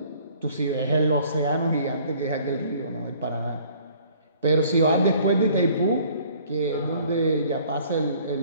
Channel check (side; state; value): both; inverted; correlation -0.56